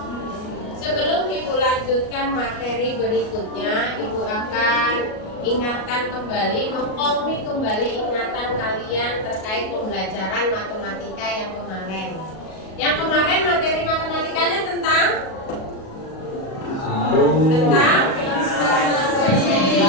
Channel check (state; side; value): late; right; 37 ms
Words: Sebelum Ibu lanjutkan materi berikutnya, Ibu akan ingatkan kembali, mengkomi kembali ingatan kalian terkait pembelajaran matematika yang kemarin. Yang kemarin materi matematikanya tentang